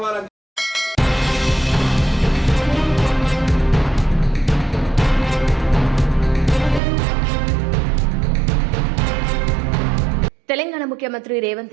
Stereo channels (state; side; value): drops out; left; at 6.8 s